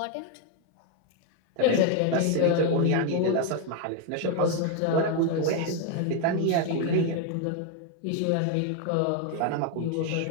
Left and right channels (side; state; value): both; different; correlation 0.01